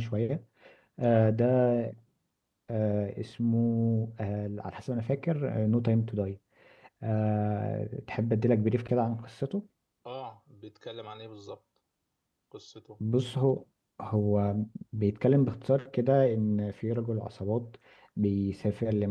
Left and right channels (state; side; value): identical; both; correlation 1.00